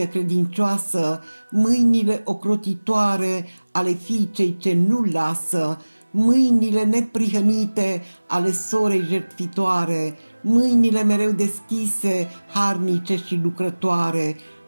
credincioasă, mâinile ocrotitoare ale fiicei ce nu lasă, mâinile neprihănite ale sorei jertfitoare, mâinile mereu deschise, harnice și lucrătoare,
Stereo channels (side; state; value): both; inverted; correlation -1.00